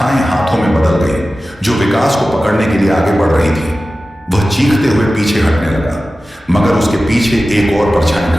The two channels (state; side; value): normal; both; correlation 0.95